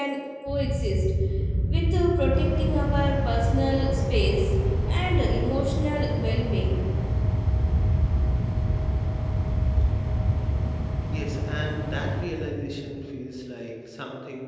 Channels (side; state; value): both; identical; correlation 1.00